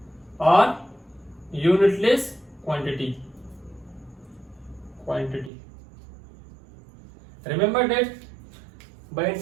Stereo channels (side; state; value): left; drops out; at 5.5 s